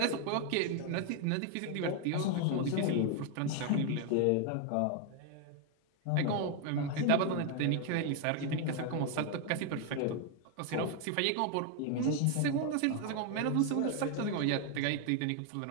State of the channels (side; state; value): both; different; correlation 0.01